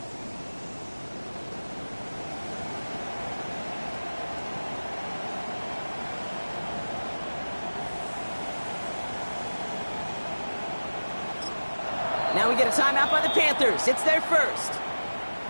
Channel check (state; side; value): inverted; both; correlation -1.00